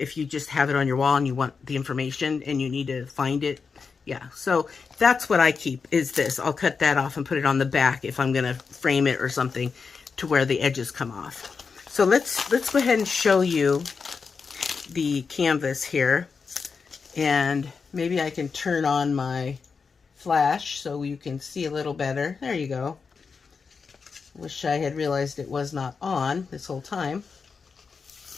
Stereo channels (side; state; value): right; quieter; 5.2 dB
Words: you just have it on your wall and you want the information and you need to find it. Yeah, so that's what I keep, is this. I'll cut that off and put it on the back if I'm gonna frame it or something, to where the edges come off. So let's go ahead and show you the canvas here. And maybe I can turn on my flash so you can see a little better. There you go. Wish I had realized it was not on this whole time.